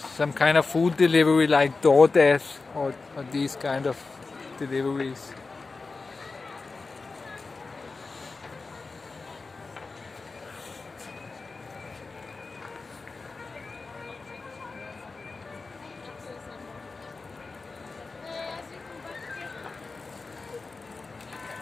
some kind of food delivery like DoorDash or these kind of deliveries.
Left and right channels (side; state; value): right; quieter; 4.0 dB